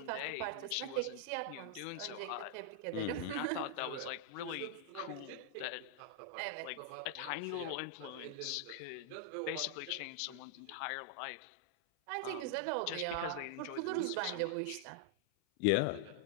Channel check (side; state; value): both; different; correlation 0.00